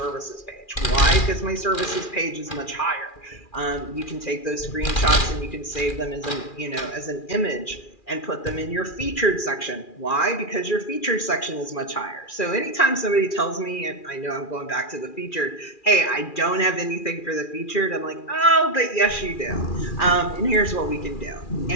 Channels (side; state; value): right; late; 2.4 ms